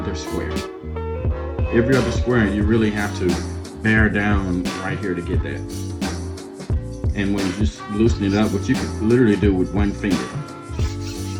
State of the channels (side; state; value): both; identical; correlation 1.00